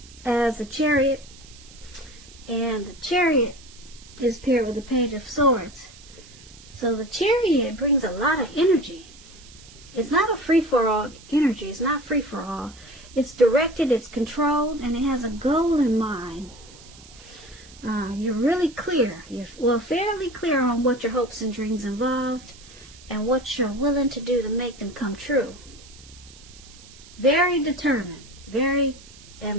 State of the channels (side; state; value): right; noise; hiss, 21 dB below the sound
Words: as a chariot, and the chariot is paired with the Page of Swords. So the chariot brings a lot of energy. It's not a free-for-all energy. It's not free-for-all. It's directed, it's controlled, and it has a goal in mind. You're really clear. You're fairly clear on what your hopes and dreams involved and what you're willing to do to make them come true. Very determined, very